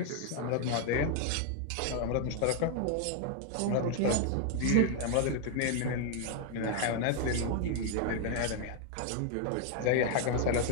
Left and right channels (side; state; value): both; different; correlation 0.00